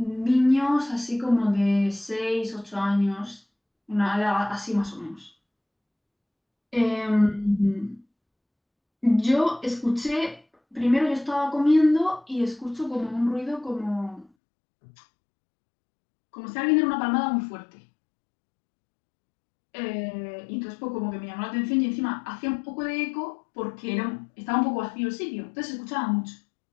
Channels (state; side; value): drops out; right; at 14.3 s